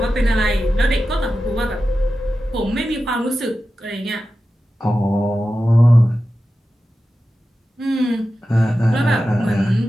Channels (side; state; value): both; normal; correlation 0.93